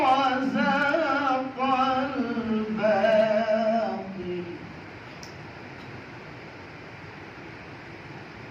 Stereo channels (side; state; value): both; identical; correlation 1.00